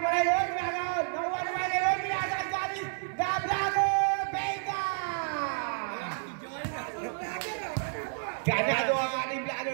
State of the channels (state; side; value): silent; left; 55 dB below the other